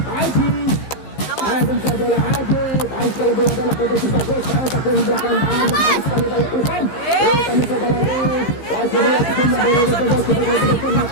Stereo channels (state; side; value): late; right; 15 ms